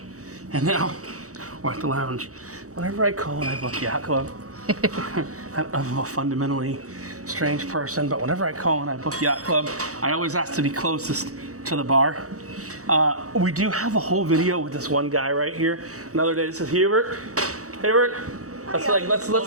and now we're at the lounge. Whenever I call and I book Yacht Club, I'm a fundamentally strange person, but whenever I call and I book Yacht Club, I always ask to be closest to the bar. We do have a whole video with this one guy right here. Another day, this is Hubert. Hubert,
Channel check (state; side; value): late; left; 0.65 ms